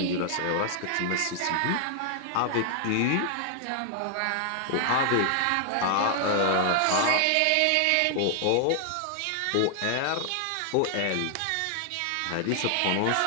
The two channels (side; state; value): both; different; correlation 0.00